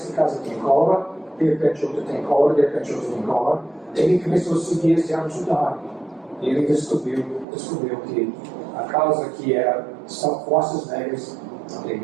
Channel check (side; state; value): left; drops out; at 7.5 s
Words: tem cólera, de repente outra tem cólera, de repente outra tem cólera. Ele começou a seguir esse água subterrânea. E ele descobriu que a causa que era são forças negras,